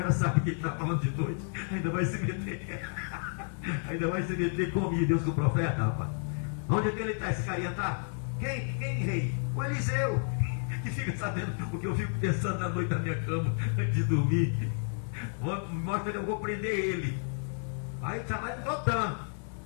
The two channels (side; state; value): right; silent; 57 dB below the other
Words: sabe que ele está falando de noite, ainda vai se meter. Ainda vai se meter comigo, Deus, com o profeta, rapaz. Onde é que ele está, esse carinha está? Quem, rei? O Eliseu, que fica sabendo o que eu fico pensando na noite na minha cama antes de dormir. Mostra que eu vou prender ele. Aí está lá em Dotã.